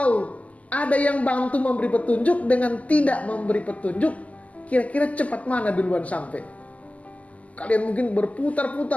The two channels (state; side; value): late; right; 0.072 ms